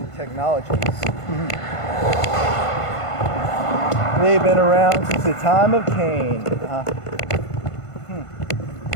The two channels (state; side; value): late; right; 1.5 ms